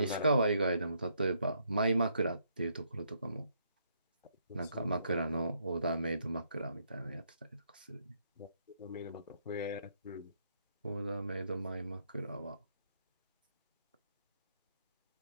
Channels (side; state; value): both; inverted; correlation -0.73